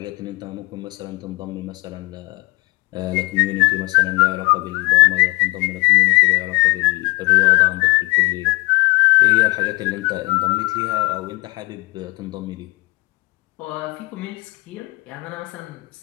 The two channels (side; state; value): right; quieter; 24.0 dB